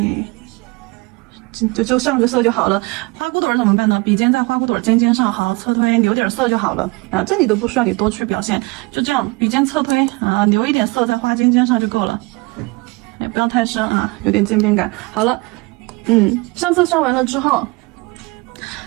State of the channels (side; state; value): left; quieter; 25.4 dB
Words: 就上个色就好了。花骨朵怎么办呢？笔尖在花骨朵尖尖上，好，侧推留点色就好了啊，这里都不需要你多去表现，就这样笔尖侧推啊，留一点色在花尖尖上就够了，也不要太深啊，有点渐变感。好了，上色上完了之后，